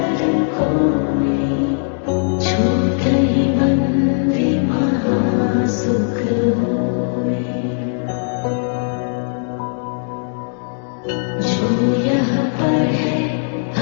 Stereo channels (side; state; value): right; silent; digital silence